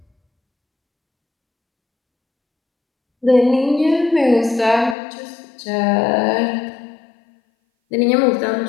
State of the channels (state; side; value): drops out; right; at 5.0 s